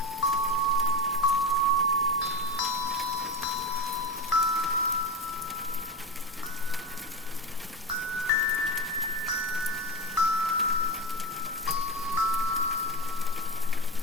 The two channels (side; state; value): both; normal; correlation 0.21